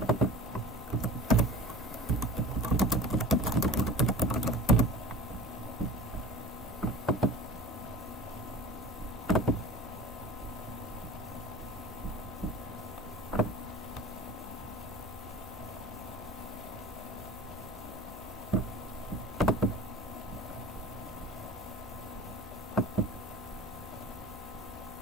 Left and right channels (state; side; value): normal; both; correlation 0.39